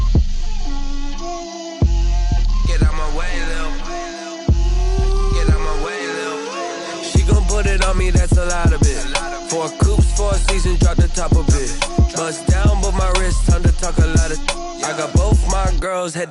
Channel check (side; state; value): both; identical; correlation 1.00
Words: Get out my way, Lil. Get out my way, Lil. She gon' put it on me, that's a lot of it. 4 coops, 4 seasons, drop the top a bit. Bust down, but my wrist, time to talk a lot of. I got both my girls